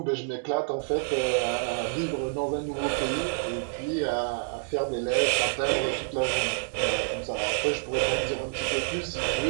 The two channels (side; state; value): left; silent; 59 dB below the other